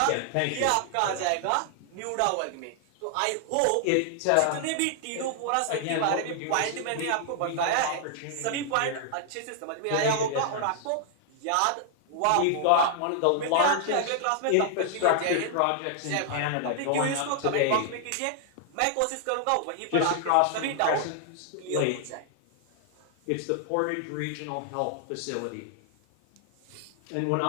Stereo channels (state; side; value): different; both; correlation 0.00